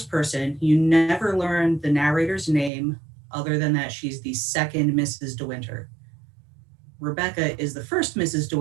person. You never learn the narrator's name other than that she's the second Mrs. De Winter. Rebecca is the first Mrs. De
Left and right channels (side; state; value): left; drops out; at 2.7 s